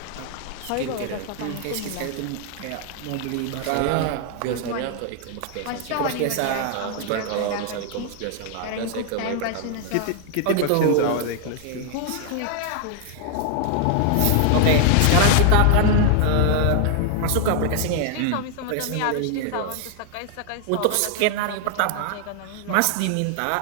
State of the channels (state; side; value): different; both; correlation 0.00